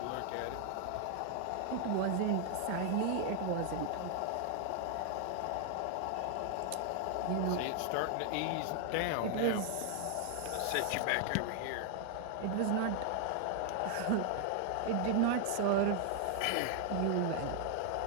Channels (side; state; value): both; different; correlation 0.00